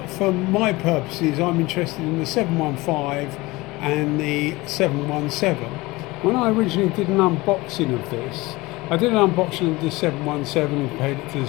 for my purposes, I'm interested in the 715 and the 717. When I originally did an unboxing of this, I did an unboxing of the 717 and compared it to the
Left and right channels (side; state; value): right; quieter; 21.4 dB